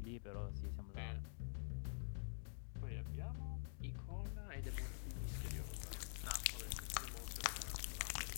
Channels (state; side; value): silent; right; digital silence